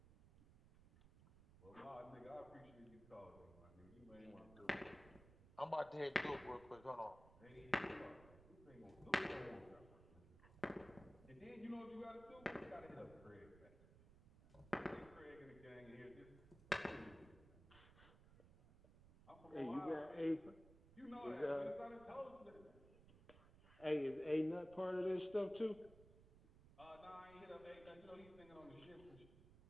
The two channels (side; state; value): right; noise; rumble, 20 dB below the sound